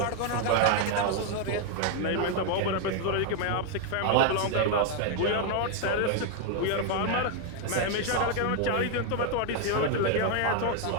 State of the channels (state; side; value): different; both; correlation 0.01